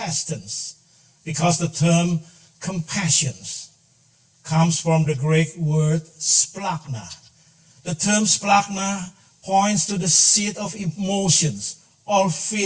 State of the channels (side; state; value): both; identical; correlation 1.00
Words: because the term compassion comes from the Greek word splachna. The term splachna points to the seat of emotions or